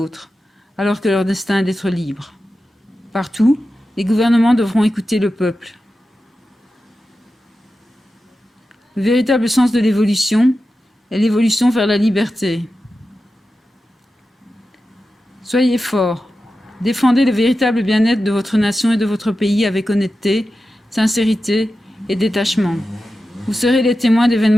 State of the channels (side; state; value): both; normal; correlation 0.92